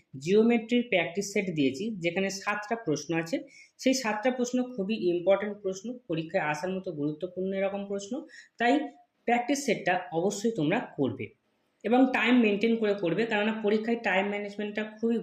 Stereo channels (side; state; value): both; identical; correlation 1.00